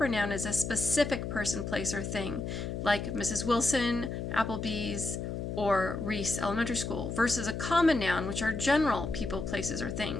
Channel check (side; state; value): left; noise; hum, 4 dB below the sound